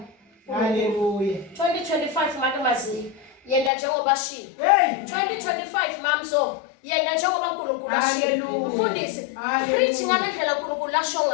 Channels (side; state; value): right; drops out; at 3.7 s